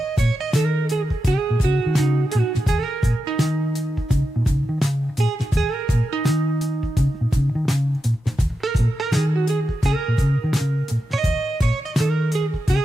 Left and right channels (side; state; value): both; normal; correlation 0.89